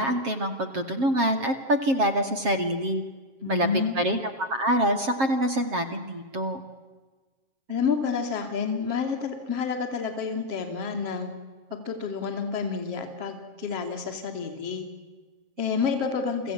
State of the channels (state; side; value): late; left; 7.5 ms